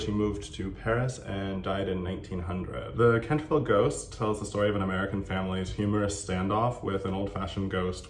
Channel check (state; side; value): identical; both; correlation 1.00